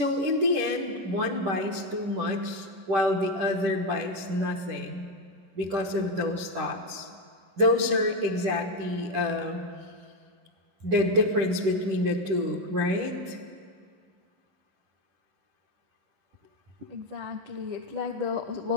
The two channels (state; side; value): late; left; 10 ms